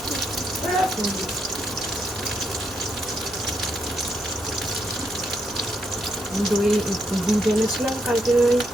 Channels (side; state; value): both; normal; correlation 0.79